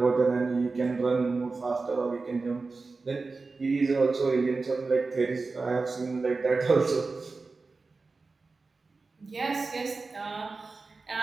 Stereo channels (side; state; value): left; quieter; 3.9 dB